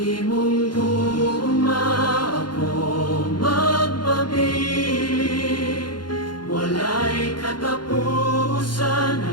gugma ako magpabiling, walay katapusan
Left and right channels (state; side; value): late; right; 0.71 ms